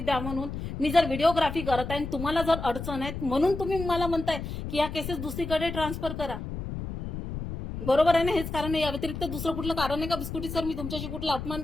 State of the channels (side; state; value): left; noise; rumble, 7 dB below the sound